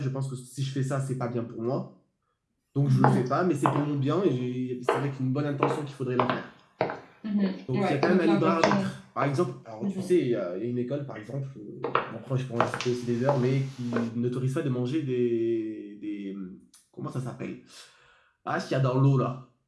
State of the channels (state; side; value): identical; both; correlation 1.00